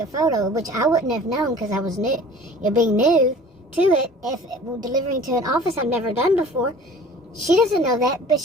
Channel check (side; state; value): both; normal; correlation 0.46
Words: photo, which I wouldn't have known because I was new, being new to it, if delivering to an office I've never done before, she doesn't know that, but